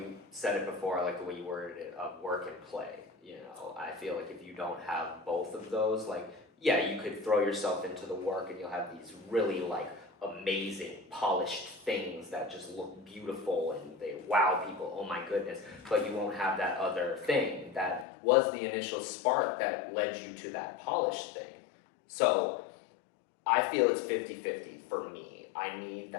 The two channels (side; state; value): right; drops out; at 18.1 s